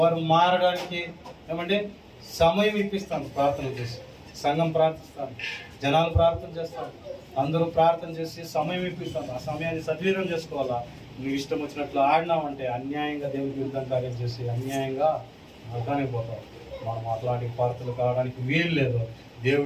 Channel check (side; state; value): both; identical; correlation 1.00